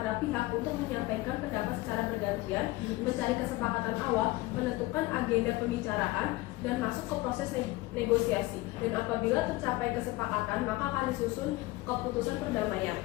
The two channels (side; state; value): right; quieter; 19.8 dB